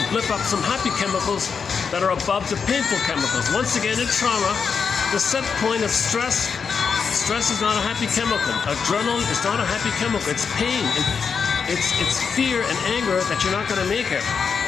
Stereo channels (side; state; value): right; quieter; 6.0 dB